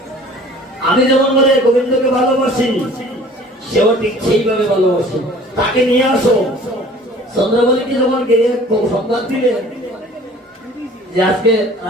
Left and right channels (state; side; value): normal; both; correlation 0.48